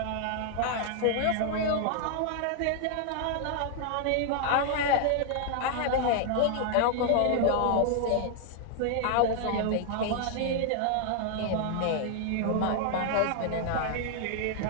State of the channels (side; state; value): both; different; correlation 0.00